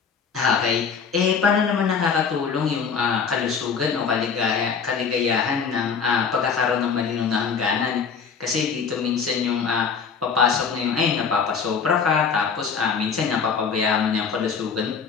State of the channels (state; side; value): quieter; right; 6.0 dB